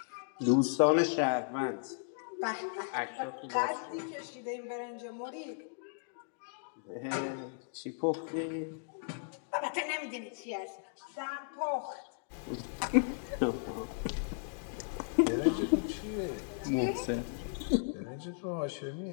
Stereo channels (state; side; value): silent; right; digital silence